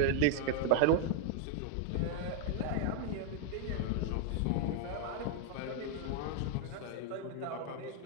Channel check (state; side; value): different; both; correlation 0.00